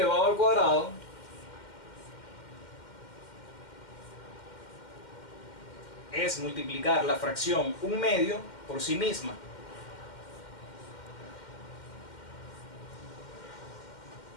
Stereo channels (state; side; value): late; right; 2.1 ms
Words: al cuadrado es multiplicar la fracción 1/2 por sí misma.